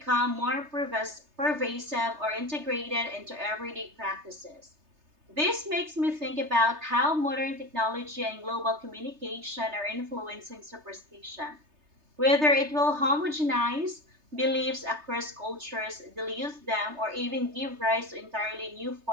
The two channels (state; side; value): late; left; 3.3 ms